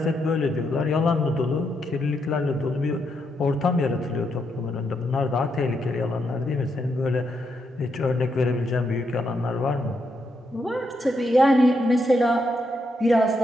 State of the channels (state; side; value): normal; both; correlation 0.80